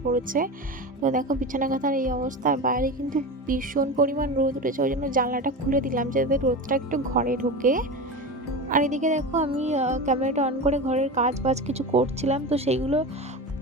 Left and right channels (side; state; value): both; normal; correlation 0.25